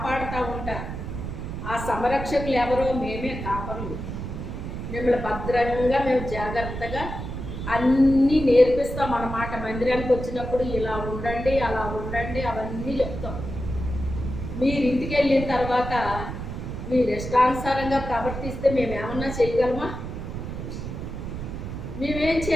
ఉంటారు. ఆ సంరక్షకులు ఎవరో? మేమే కాపరులు. మిమ్మల్ని భద్రంగా మేము జాగ్రత్తగా అన్నీ నేర్పిస్తాం అన్నమాట. మందిరానికి వచ్చినప్పుడు ఇలా ఉండండి, అలా ఉండండి, అవన్నీ చెప్తాం. మీరు ఇంటికి వెళ్ళిన తర్వాత మీరు ఇష్టానుసారంగా ప్రవర్తిస్తే మేమేమన్నా చేయగలమా? మేమేం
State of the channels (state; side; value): noise; right; rumble, 6 dB below the sound